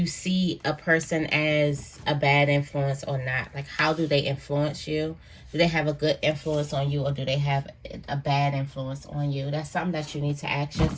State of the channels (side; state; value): both; identical; correlation 1.00